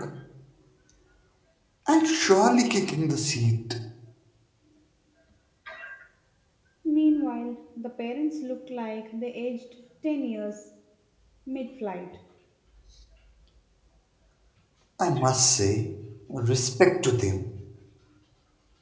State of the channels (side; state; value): both; identical; correlation 1.00